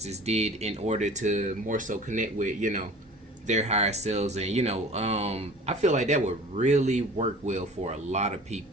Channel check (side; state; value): both; normal; correlation 0.43